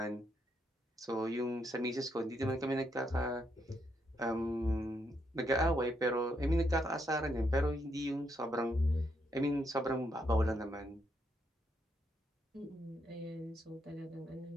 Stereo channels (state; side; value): normal; both; correlation 0.77